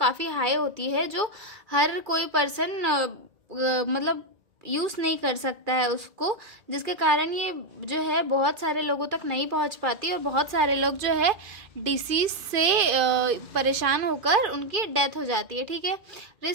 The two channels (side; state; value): left; late; 2.4 ms